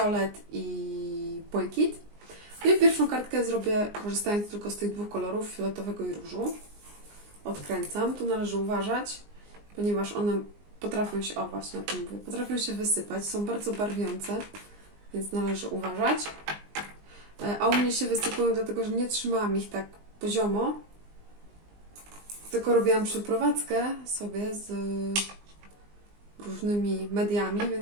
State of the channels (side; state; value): left; late; 19 ms